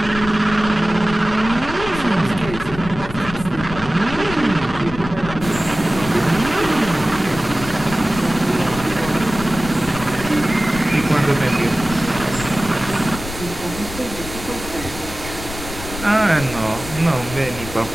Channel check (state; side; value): noise; left; rumble, 11 dB below the sound